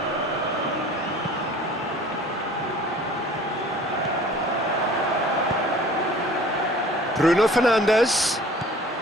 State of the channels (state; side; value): normal; both; correlation 0.47